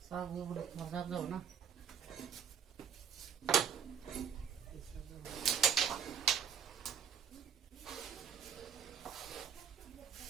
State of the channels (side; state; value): left; quieter; 7.7 dB